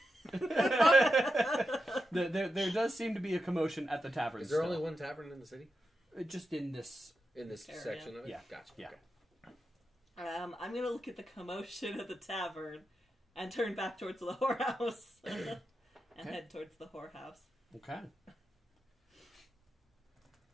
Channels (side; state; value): both; normal; correlation 0.88